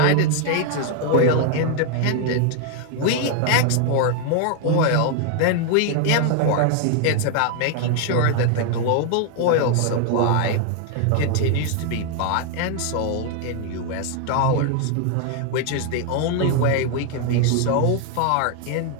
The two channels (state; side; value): different; both; correlation 0.00